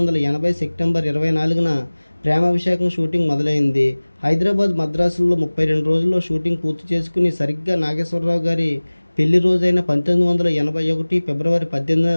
సెప్టెంబర్ 24న ప్రేమాభిషేకం షూటింగ్ మొదలైంది. హైదరాబాద్, మద్రాసుల్లో 32 రోజుల్లో షూటింగ్ పూర్తి చేసుకుని సరిగ్గా నాగేశ్వరరావు గారి పెళ్లి రోజైన 1981 ఫిబ్రవరి 18న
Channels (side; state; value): both; inverted; correlation -1.00